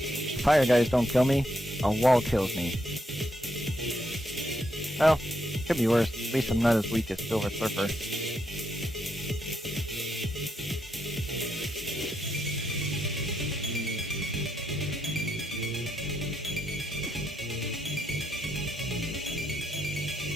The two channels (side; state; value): both; normal; correlation 0.80